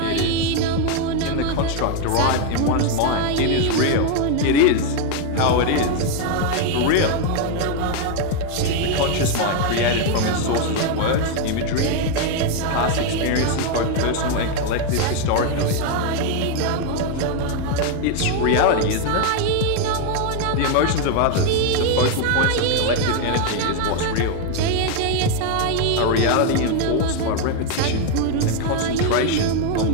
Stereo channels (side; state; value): both; different; correlation 0.01